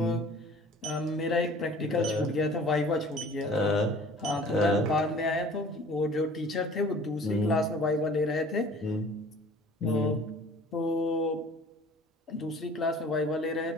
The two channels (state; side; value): normal; both; correlation 0.48